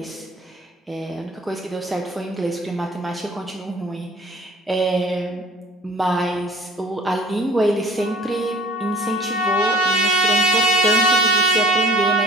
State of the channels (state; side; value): normal; both; correlation 0.48